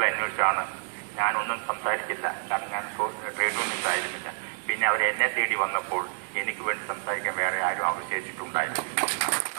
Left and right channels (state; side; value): silent; left; digital silence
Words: അന്വേഷിച്ചാണ്. ഞാനൊന്നും സംസാരിച്ചില്ല, കാരണം ഞാൻ ട്രേഡ് യൂണിയൻസ് ആയിരുന്നില്ല. പിന്നെ അവർ എന്നെ തേടി വന്നപ്പോൾ എനിക്ക് വേണ്ടി സംസാരിക്കാൻ വേറെ ആരും അവശേഷിച്ചിട്ടുണ്ടായിരുന്നു